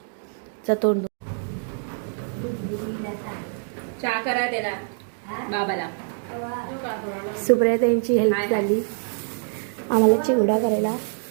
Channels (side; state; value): left; silent; digital silence